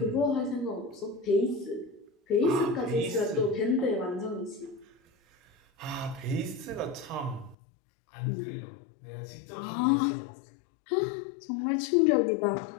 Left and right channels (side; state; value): right; drops out; at 7.6 s